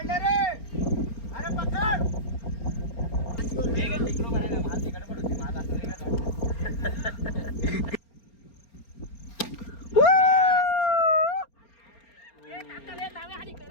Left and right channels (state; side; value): late; right; 4.3 ms